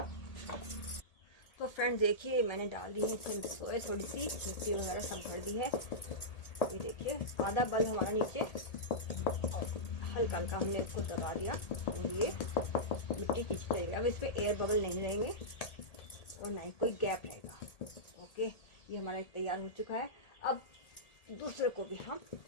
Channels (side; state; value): right; late; 1.8 ms